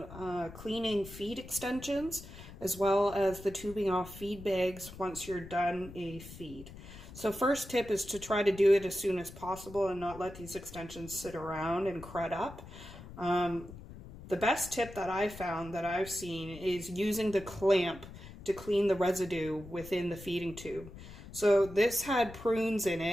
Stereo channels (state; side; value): noise; left; rumble, 15 dB below the sound